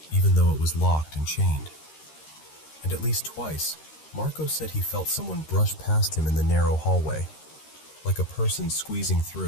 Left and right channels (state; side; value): late; right; 13 ms